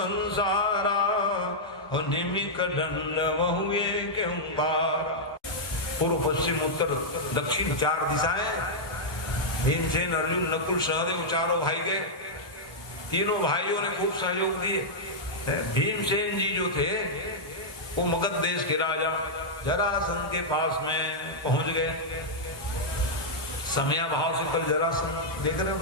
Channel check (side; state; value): right; late; 1.0 ms